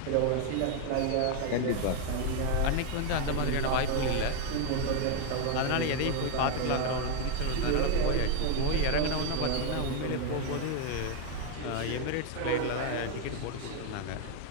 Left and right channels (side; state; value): both; different; correlation 0.01